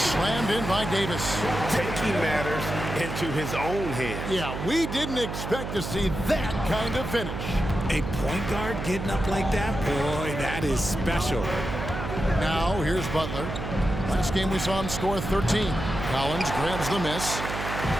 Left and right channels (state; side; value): noise; right; hum, 6 dB below the sound